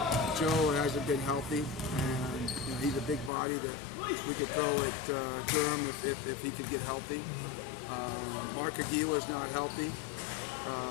Joe hasn't been healthy, and you know, he's a big body that we could throw at Durham if he could get healthy. Mark Aguila's not healthy,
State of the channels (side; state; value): right; drops out; at 3.3 s